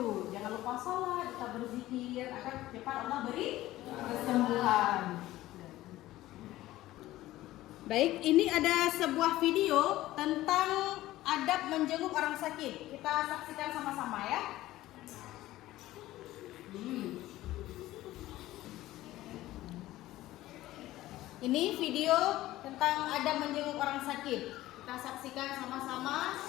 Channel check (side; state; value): right; quieter; 16.0 dB